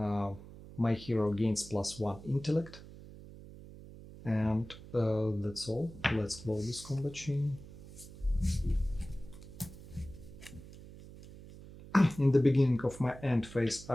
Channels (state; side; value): noise; right; hum, 16 dB below the sound